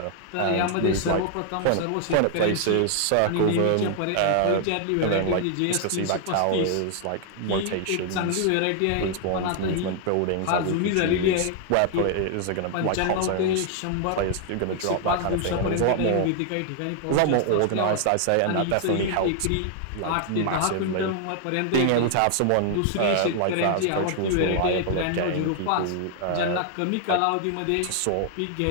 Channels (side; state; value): both; different; correlation 0.00